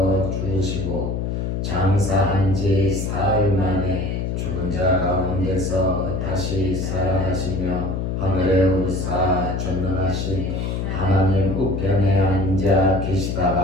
죽으시고 장사한 지 사흘 만에 죽은 자 가운데서 다시 살아나시며 하늘에 오르사 전능하신 하나님 우편에 앉아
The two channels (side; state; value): left; noise; hum, 2 dB below the sound